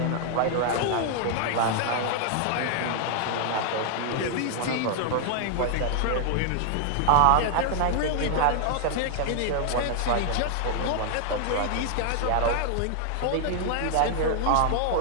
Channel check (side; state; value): both; different; correlation 0.00